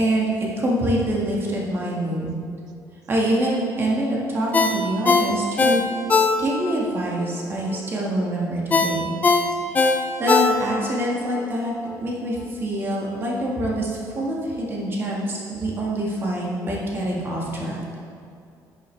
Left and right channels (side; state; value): both; normal; correlation 0.63